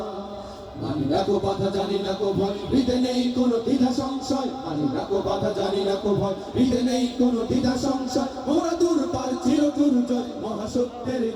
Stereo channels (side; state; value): both; identical; correlation 1.00